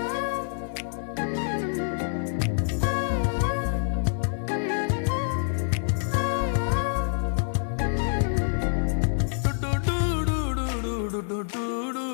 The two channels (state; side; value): silent; right; digital silence